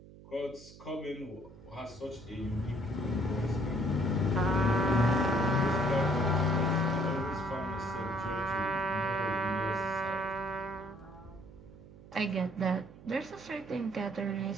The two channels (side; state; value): right; noise; hum, 19 dB below the sound